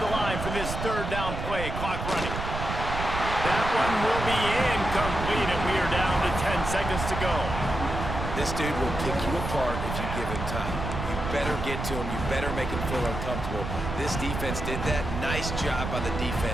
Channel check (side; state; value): right; noise; rumble, 5 dB below the sound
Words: the line for this third down play. Clock running. That one will be incomplete, and we are down to 10 seconds to go. This dude will pick you apart if you give him time. You better get to him. You better make him feel uncomfortable. This defense did that. Nice job by the